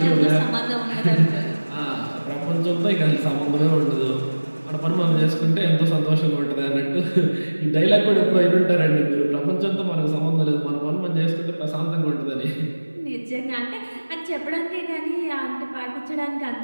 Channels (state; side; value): inverted; both; correlation -1.00